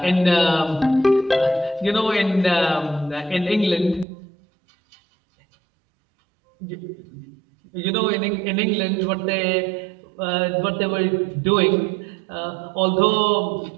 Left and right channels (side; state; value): left; drops out; at 4.0 s